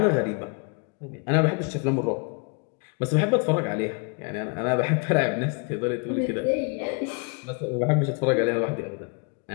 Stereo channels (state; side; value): quieter; right; 34.7 dB